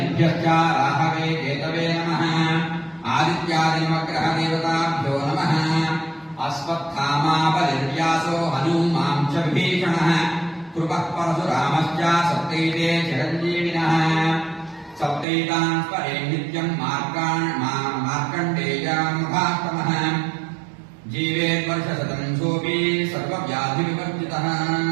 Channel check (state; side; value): drops out; left; at 15.2 s